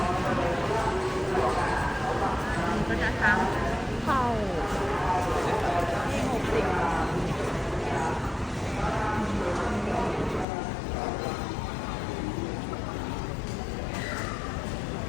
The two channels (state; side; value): drops out; right; at 10.5 s